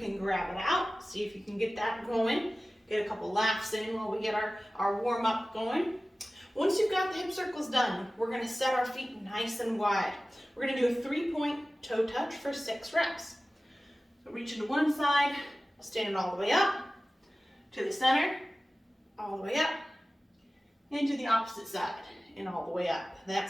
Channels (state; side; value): normal; both; correlation 0.96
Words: grab it out, see if you can get that going. Get a couple laughs in while we get our warm-up going. Once you've got the hip circles done, we're going to set our feet nice and wide. We're going to do a 3-point toe touch for 6 reps. So reaching to one side, standing all the way up, to the center, all the way up, and to the opposite side, and all the way up.